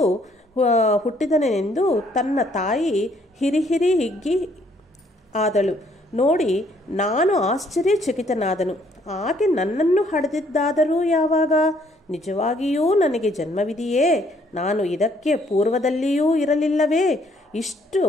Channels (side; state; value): both; normal; correlation 0.66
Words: ಹುಟ್ಟಿದನೆಂದು ತನ್ನ ತಾಯಿ ಹಿರಿ ಹಿಗ್ಗಿ ಆದಳು ನೋಡಿ ನಾನು ಆಶ್ಚರ್ಯಚಕಿತನಾದನು. ಆಕೆ ನನ್ನನ್ನು ಹಡೆದಿದ್ದಾದರೂ ಯಾವಾಗ? ನಿಜವಾಗಿಯೂ ನನಗೆ ಜನ್ಮವಿದೆಯೇ? ನಾನು ಇದಕ್ಕೆ ಪೂರ್ವದಲ್ಲಿಯೂ ಇರಲಿಲ್ಲವೇ? ಇಷ್ಟು